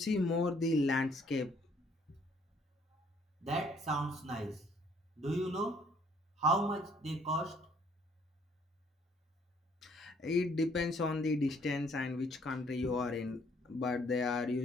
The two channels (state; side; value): normal; both; correlation 0.63